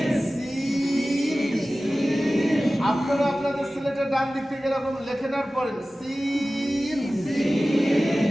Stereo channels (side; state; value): both; normal; correlation 0.96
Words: আপনারা আপনাদের সিলেটের ডান দিক থেকে এরকম লেখে নেওয়ার পরেন সিন।